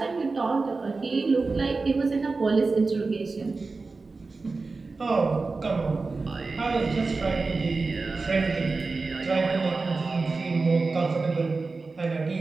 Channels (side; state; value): left; quieter; 3.9 dB